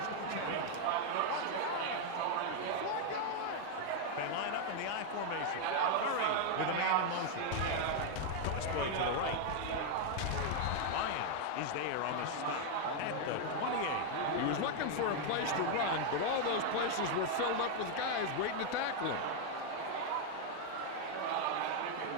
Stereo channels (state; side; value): different; both; correlation 0.00